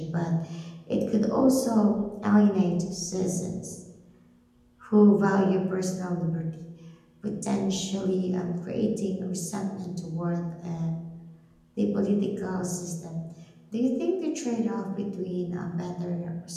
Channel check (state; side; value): identical; both; correlation 1.00